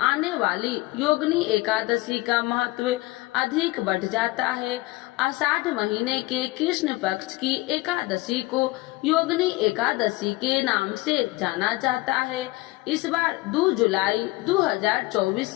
आने वाली योगिनी एकादशी का महत्व अधिक बढ़ जाता है। आषाढ़ महीने के कृष्ण पक्ष की एकादशी को योगिनी एकादशी के नाम से जाना जाता है। इस बार 2 जुलाई 2024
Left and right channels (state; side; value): quieter; right; 20.9 dB